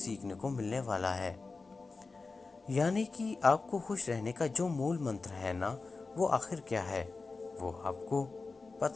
को मिलने वाला है। यानी कि आपको खुश रहने का जो मूल मंत्र है ना, वो आखिर क्या है, वो आपको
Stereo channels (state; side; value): quieter; right; 4.0 dB